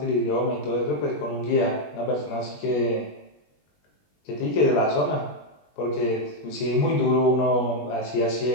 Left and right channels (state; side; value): late; right; 20 ms